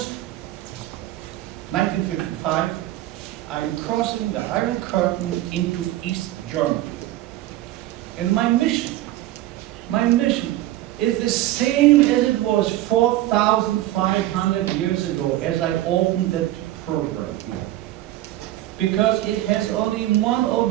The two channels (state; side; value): quieter; left; 15.2 dB